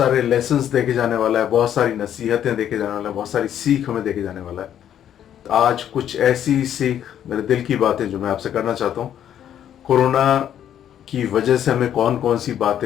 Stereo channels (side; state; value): right; quieter; 10.2 dB